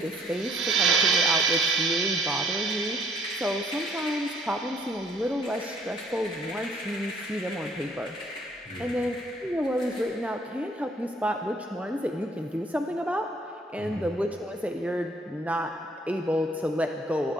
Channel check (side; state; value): both; normal; correlation 0.62